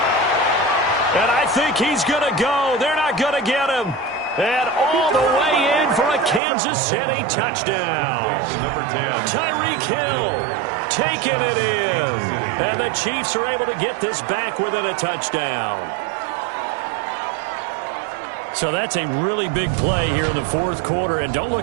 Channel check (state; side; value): drops out; left; at 6.4 s